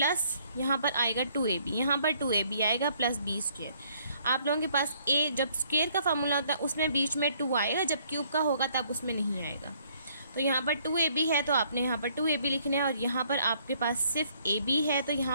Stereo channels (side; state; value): both; inverted; correlation -0.65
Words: यहाँ पर आएगा 2ab, यहाँ पर 2ab आएगा प्लस बी स्क्वायर। आप लोगों के पास a जब स्क्वायर का फार्मूला होता है उसमें बीच में 2 आएगा, जब क्यूब का होगा तब उसमें नहीं आएगा। तो यहाँ पर 2ab है तो आपने यहाँ पर 2ab लिखना है और यहाँ पर आपके पास सिर्फ ab है। तो